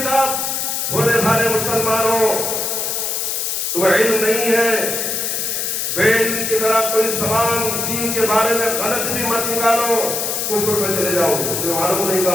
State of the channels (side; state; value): left; noise; hiss, 1 dB below the sound